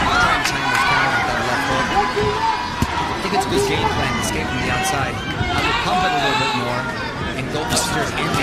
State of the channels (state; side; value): identical; both; correlation 1.00